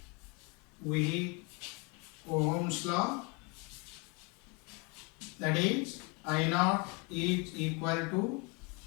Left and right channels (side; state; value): right; quieter; 30.6 dB